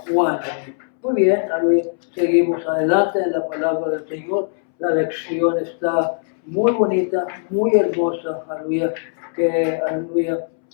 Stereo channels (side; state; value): right; silent; 66 dB below the other